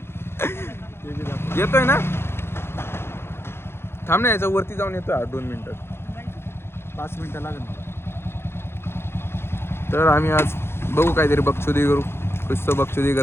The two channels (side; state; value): right; late; 0.12 ms